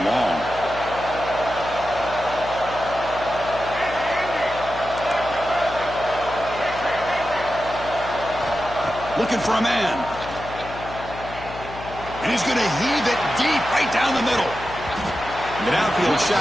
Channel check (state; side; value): noise; left; hum, 13 dB below the sound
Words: long. Looking for a man. And he's going to heave it deep right down the middle. The downfield